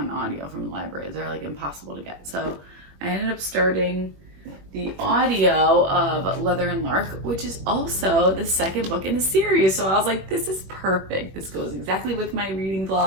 audio from the library. They're like impossible to get. So I ended up starting the audio of Leather and Lark, which is also the second book in the series. So I was like, this is perfect. This goes exactly with my reading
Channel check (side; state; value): left; late; 21 ms